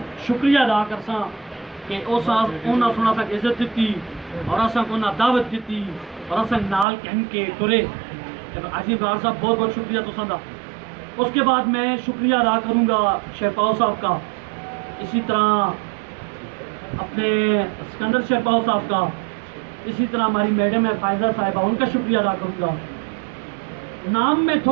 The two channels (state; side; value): drops out; left; at 6.9 s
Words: शुक्रिया अदा करसा कि उन्होंने सुना तक इज्जत दी और असा उन्हें दावत दी और असा नाल कहन के तुरे। हाजी इब्रार साहब बहुत बहुत शुक्रिया तुसां दा। उसके बाद मैं शुक्रिया अदा करूँगा शेरपाओ साहब का, इसी तरह अपने सिकंदर शेरपाओ साहब का, इसी तरह हमारी मैडम है फायजा साहिबा, उनका शुक्रिया अदा करूँगा। नाम में